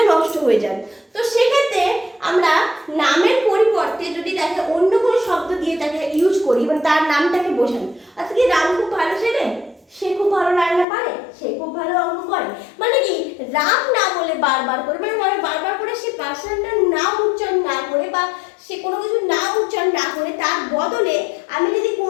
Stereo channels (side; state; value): right; drops out; at 10.9 s